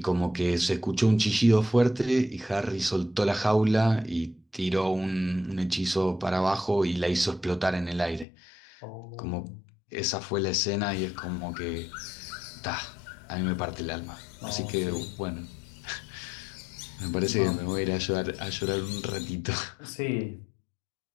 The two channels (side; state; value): right; drops out; at 8.2 s